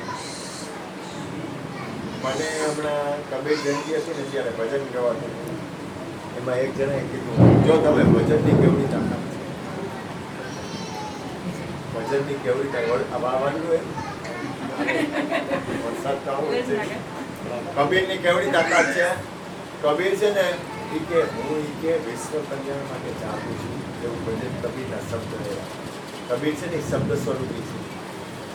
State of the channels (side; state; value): both; identical; correlation 1.00